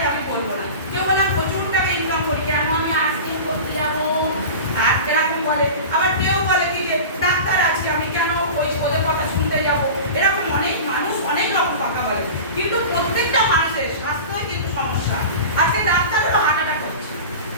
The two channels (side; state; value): both; inverted; correlation -0.33